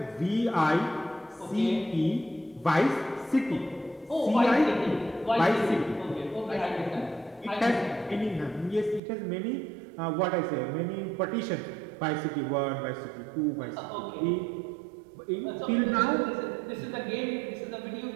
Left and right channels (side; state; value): left; drops out; at 9.0 s